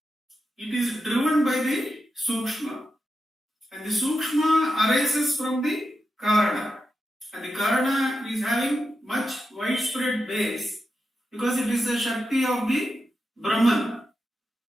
it is driven by the Sukshma. And the Sukshma arises from the Karana. And the Karana is having much widespread base because it is the Shakti of the Brahman.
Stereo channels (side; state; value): both; normal; correlation 0.89